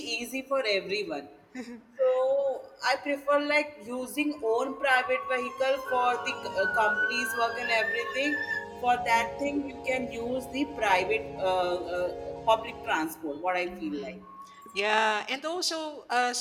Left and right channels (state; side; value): identical; both; correlation 1.00